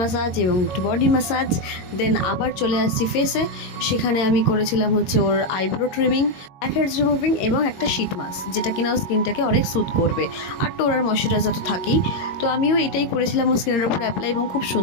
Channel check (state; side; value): late; right; 22 ms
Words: এবং একটু বডি ম্যাসাজ। দেন আবার চলে আসছি ফেসে, সেখানে আমি করেছিলাম হচ্ছে ওর eyebrow trimming, blackheads removing এবং একটা শীট মাস্ক, যেটা কিনা ওর স্কিনটাকে অনেক স্যুথ করবে। আর টোনার ময়শ্চারাইজার তো থাকেই। তো আমিও এটাই করেছিলাম ওর স্কিনের ওপর অ্যাপ্লাই, এবং খুব